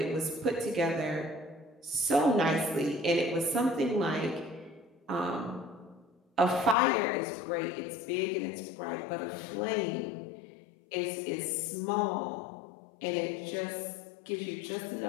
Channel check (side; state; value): right; drops out; at 6.8 s